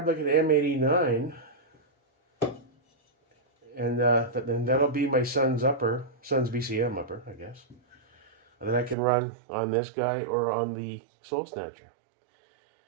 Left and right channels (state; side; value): drops out; left; at 9.0 s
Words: like an M89. And then that'll be my Suns BCM upper, I guess. And then I can run on this guy or on the Soul Snatcher.